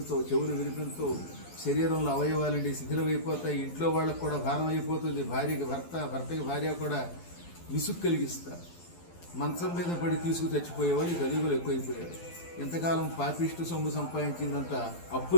చెవులు వినిపించవు, శరీరంలో అవయవాలండి శిథిలమైపోతాయి. ఇంట్లో వాళ్ళకు కూడా భారం అయిపోతుంది. భార్యకి భర్త, భర్తకి భార్య కూడా విసుగు కలిగిస్తారు. మంచం మీద పడి తీసుకు చచ్చిపోయేవాళ్ళు కలియుగులు ఎక్కువైపోయారు. ఇంతకాలం పాపిష్టి సొమ్ము సంపాదించిందంతా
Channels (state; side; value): late; right; 12 ms